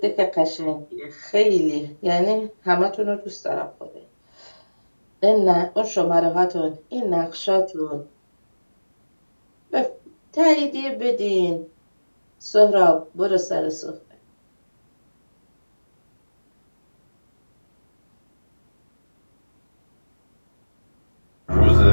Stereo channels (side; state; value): both; inverted; correlation -1.00